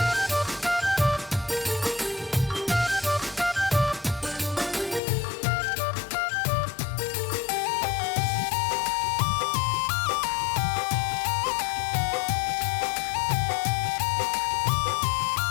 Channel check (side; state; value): right; drops out; at 5.0 s